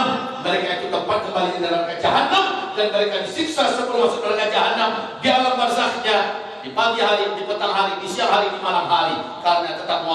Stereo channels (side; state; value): both; identical; correlation 1.00